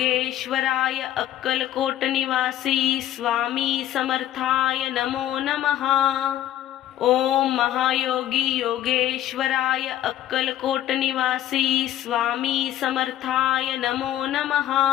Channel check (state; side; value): quieter; right; 12.4 dB